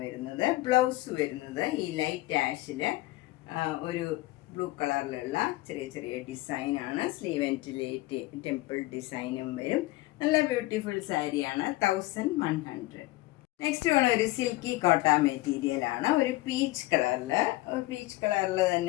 വരുന്നത്. ബ്ലൗസ് വരുന്നത് ഈ ലൈറ്റ് ആഷിൽ ഒരു ബ്ലൂ കളറിലുള്ള ചെറിയ ചെറിയ ഡിസൈനാണ്. സ്ലീവ് എൻഡിൽ ടെമ്പിൾ ഡിസൈനും വരും. നല്ല ബ്യൂട്ടിഫുൾ സാരിയാണ്. 1100. നെക്സ്റ്റ് വേണം ഒരു സിൽക്കി കോട്ട മെറ്റീരിയലാണ്. ഒരു പീച്ച് കളറിൽ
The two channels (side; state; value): right; quieter; 19.0 dB